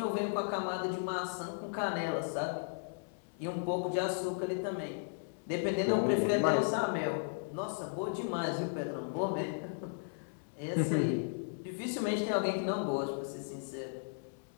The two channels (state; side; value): silent; right; digital silence